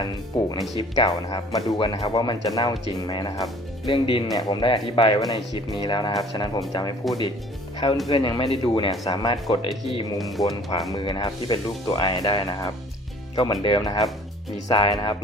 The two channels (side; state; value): both; normal; correlation 0.52